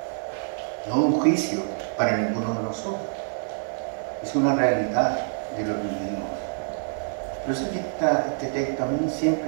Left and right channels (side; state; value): left; silent; digital silence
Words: No es un juicio para ninguno de nosotros. Es una realidad de lo que vivimos. Yo sé que este texto a mí